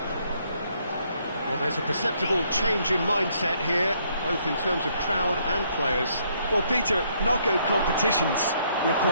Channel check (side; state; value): both; inverted; correlation -0.69